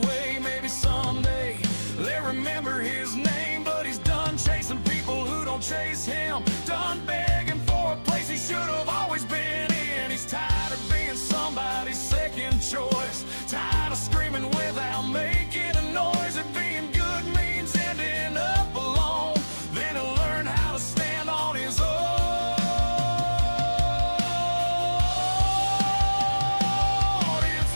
Maybe someday they'll remember his name. But he's done chasing people who don't chase him, done begging for a place he should have always been in. He's tired of being somebody's second choice, tired of screaming without making a noise. And being good means ending up alone, then he'll learn how to stand on his own. It's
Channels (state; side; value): inverted; both; correlation -1.00